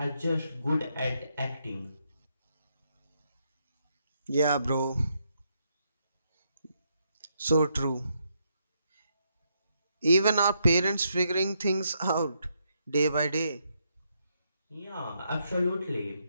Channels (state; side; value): inverted; both; correlation -0.78